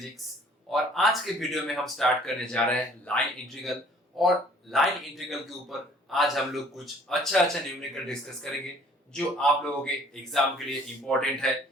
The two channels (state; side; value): normal; both; correlation 0.56